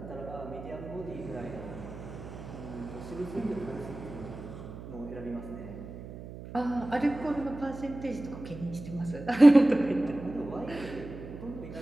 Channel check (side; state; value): right; noise; hum, 12 dB below the sound